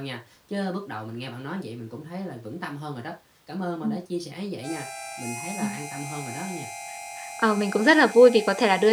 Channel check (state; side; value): identical; both; correlation 1.00